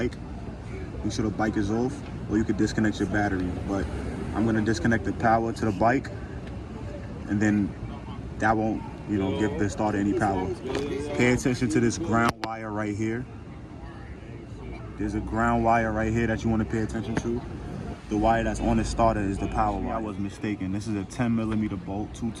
Make sure the bike is off, or you could disconnect your battery. But I'm gonna disconnect the power to the bike, and then that won't, give the starter any power. Pay attention to this ground wire right here. There's a ground wire right here that you wanna pay attention to. The wire that's on the starter is the power wire. I was mistaken. This is a 10 millimeter bolt, two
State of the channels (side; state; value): both; identical; correlation 1.00